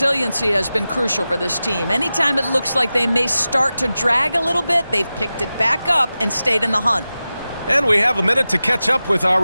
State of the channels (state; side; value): inverted; both; correlation -0.94